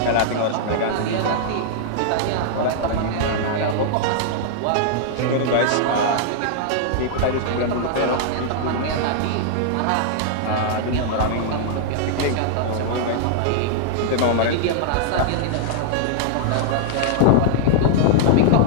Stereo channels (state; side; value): different; both; correlation -0.01